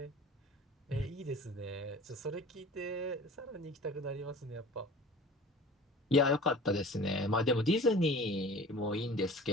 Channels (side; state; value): both; normal; correlation 0.42